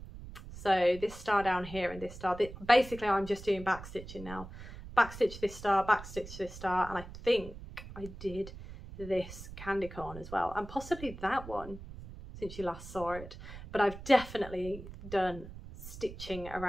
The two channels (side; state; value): right; noise; rumble, 13 dB below the sound